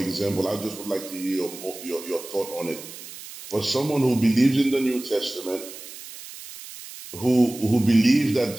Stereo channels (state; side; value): noise; right; hiss, 14 dB below the sound